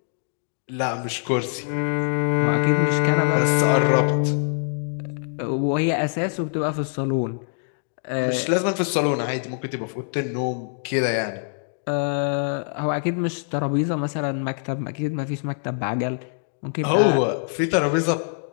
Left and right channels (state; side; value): silent; right; digital silence